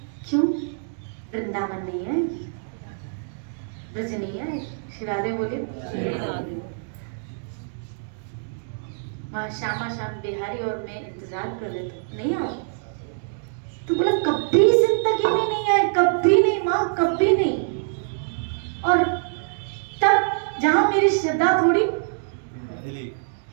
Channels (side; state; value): left; silent; digital silence